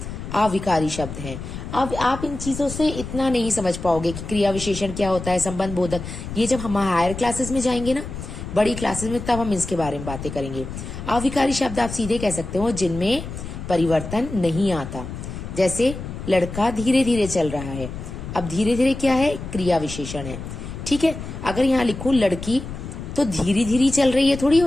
अविकारी शब्द हैं। अब आप इन चीजों से इतना नहीं समझ पाओगे कि क्रिया विशेषण क्या होता है, संबंध बोधक, ये जब हम हायर क्लासेस में जाएंगे ना, बड़ी क्लासेस में, तब हम इसके बारे में बातें करेंगे। अविकारी शब्द आप सीधे कह सकते हो जिनमें परिवर्तन नहीं आता। जैसे लड़का धीरे धीरे चल रहा है, अब धीरे धीरे क्या है? क्रिया विशेषण है। ठीक है, अगर यहाँ लिखूं लड़की तो धीरे धीरे चल रही है थोड़ी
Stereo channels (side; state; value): left; noise; rumble, 9 dB below the sound